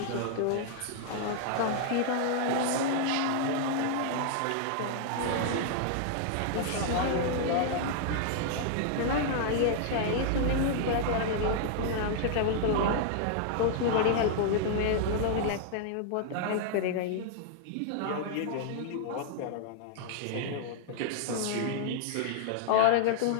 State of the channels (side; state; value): both; different; correlation -0.01